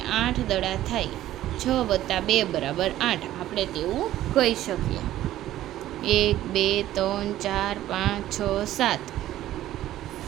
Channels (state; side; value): quieter; left; 13.7 dB